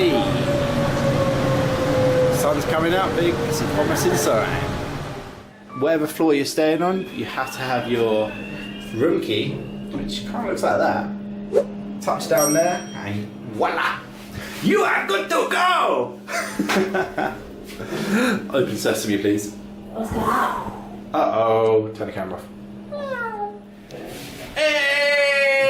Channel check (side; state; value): both; identical; correlation 1.00